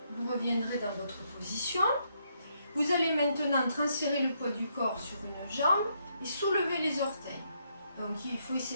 Vous reviendrez dans votre position. Vous allez maintenant transférer le poids du corps sur une jambe et soulever les orteils. Donc il faut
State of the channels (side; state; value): both; inverted; correlation -0.75